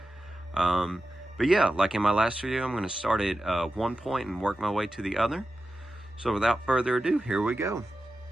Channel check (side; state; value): both; normal; correlation 0.92